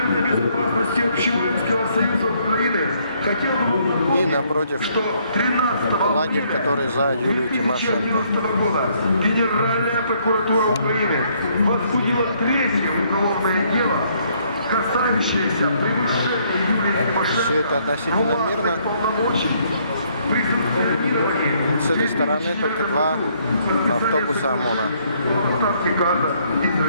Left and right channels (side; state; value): both; inverted; correlation -0.67